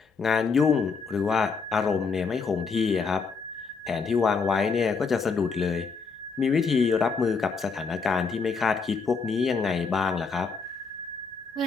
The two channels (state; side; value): quieter; right; 5.0 dB